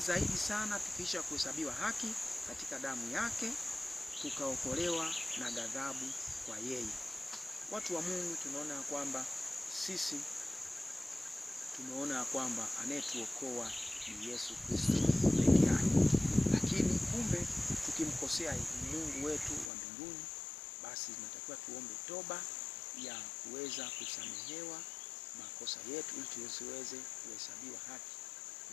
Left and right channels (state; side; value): drops out; right; at 19.7 s